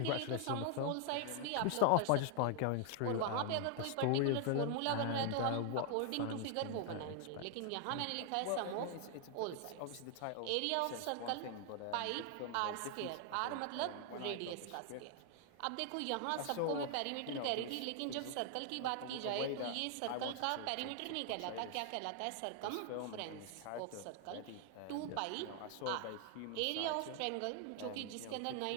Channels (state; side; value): different; both; correlation 0.00